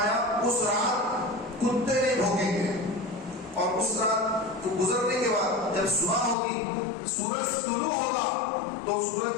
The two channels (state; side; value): drops out; right; at 6.4 s